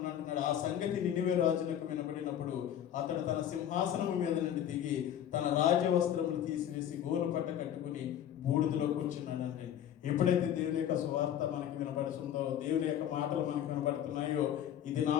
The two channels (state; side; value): quieter; right; 10.4 dB